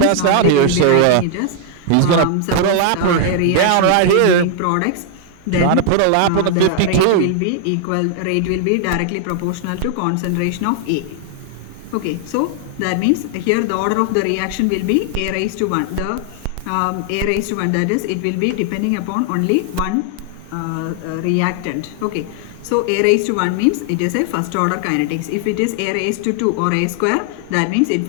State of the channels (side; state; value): both; different; correlation 0.00